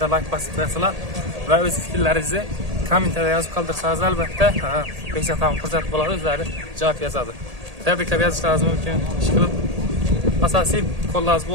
like basıp verseler ve öz fikirlerinizi komentarda yazıp kaldırsanız elbette Beksetanım fırsat bular özleri cevap yazadı. Tebrikler yazışlarınız mümkün. Şıkılıp asasi kollarınız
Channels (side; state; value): left; late; 1.8 ms